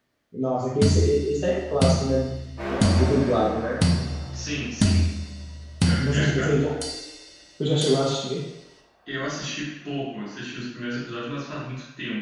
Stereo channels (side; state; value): both; identical; correlation 1.00